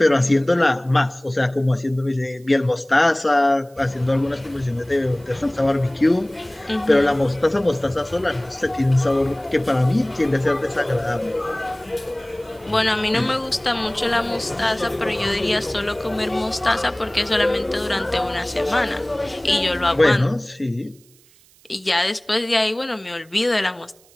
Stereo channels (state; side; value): noise; right; hiss, 29 dB below the sound